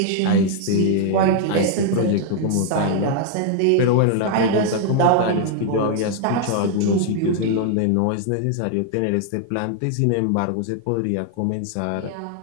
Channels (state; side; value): different; both; correlation 0.00